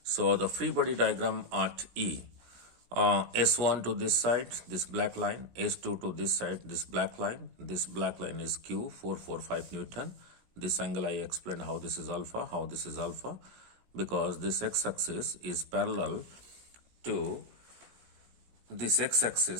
So the free body diagram at E. S1 to this side, this black line, S2 to this side, this black line. This black line is Q, 445 Newton. This angle I explained how this is alpha, because this x-axis is parallel to this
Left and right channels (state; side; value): late; left; 17 ms